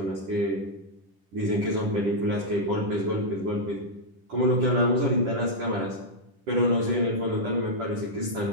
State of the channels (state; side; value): late; left; 10 ms